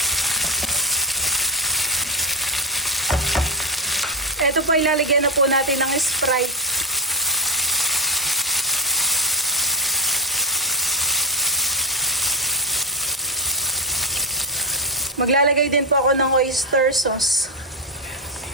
Ito po ilalagyan na po natin ng Sprite. Maglalagay din po ako ng oyster sauce.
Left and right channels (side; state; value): both; normal; correlation 0.17